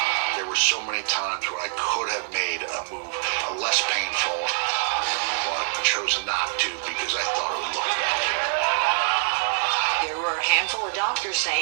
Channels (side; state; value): left; silent; digital silence